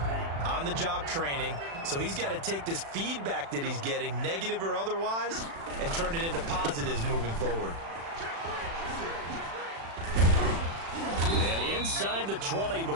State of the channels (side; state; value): left; late; 36 ms